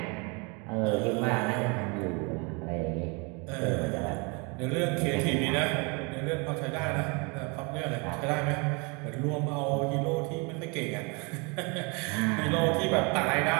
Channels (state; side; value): quieter; left; 30.8 dB